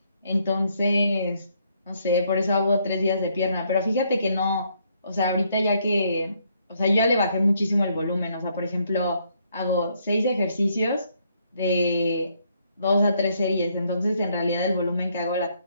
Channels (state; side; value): inverted; both; correlation -0.71